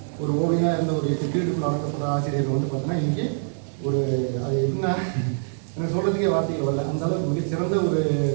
ஒரு ஓவியனாக இருந்த ஒரு 8 பீரியடுக்குள்ள அடக்கப்பட்ட ஆசிரியர் வந்து பார்த்தீங்கன்னா இன்றைக்கி ஒரு அது எப்படின்னா எனக்கு சொல்கிறதுக்கே வார்த்தைகள் வரல. அந்த அளவுக்கு மிகச்சிறந்த ஒரு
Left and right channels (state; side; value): silent; left; digital silence